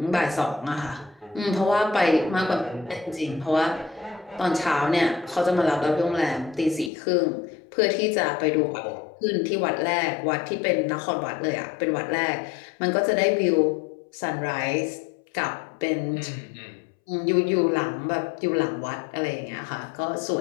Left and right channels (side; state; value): right; drops out; at 6.9 s